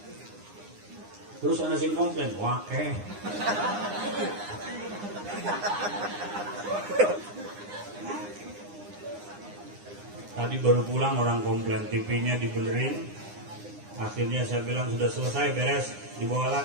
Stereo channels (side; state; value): left; late; 9.8 ms